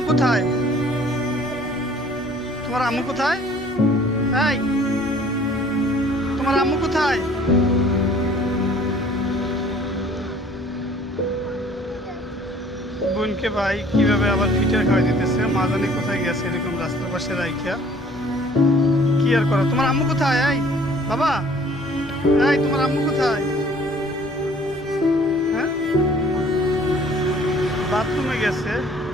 কোথায়? তোমার আম্মু কোথায়? এই তোমার আম্মু কোথায়? বোনকে ভাই কিভাবে আবার ফিটার খাওয়াই দিতেছে, মা জানি কোথায় গেছে এরকম রাস্তার পাশে রাইখা। কি আর করো? তোমার আম্মু কোথায়? এই বাবা, এই তোমার আম্মু কোথায়? হ্যাঁ, বাথরুমে গেছে।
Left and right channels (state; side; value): normal; both; correlation 0.54